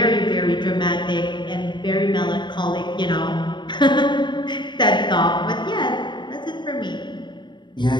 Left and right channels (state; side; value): late; right; 0.22 ms